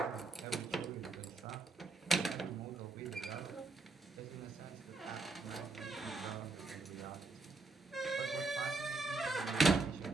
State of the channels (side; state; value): left; quieter; 3.6 dB